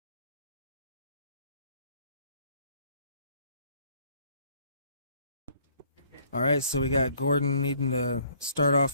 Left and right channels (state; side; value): inverted; both; correlation -0.61